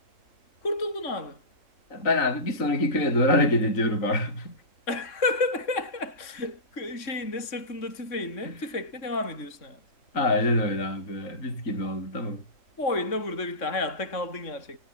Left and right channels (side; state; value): right; late; 3.6 ms